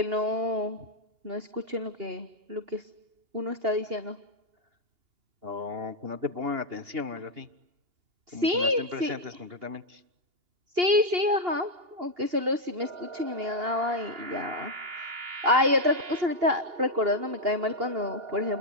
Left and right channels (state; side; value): late; left; 2.8 ms